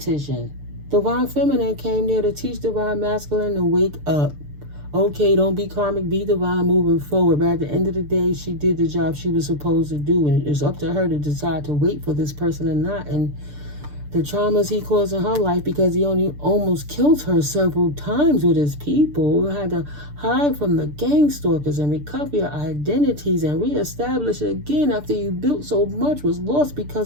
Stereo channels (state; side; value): late; left; 6.8 ms